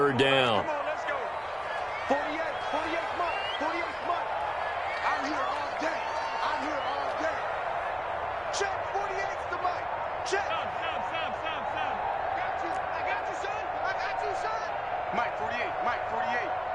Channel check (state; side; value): identical; both; correlation 1.00